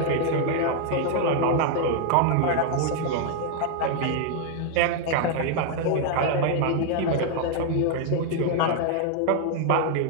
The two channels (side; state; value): both; different; correlation 0.00